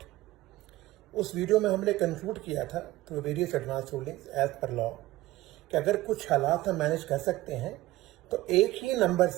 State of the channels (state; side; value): quieter; left; 17.2 dB